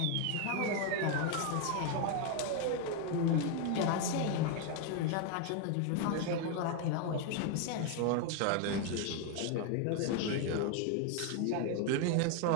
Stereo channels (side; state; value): both; different; correlation 0.01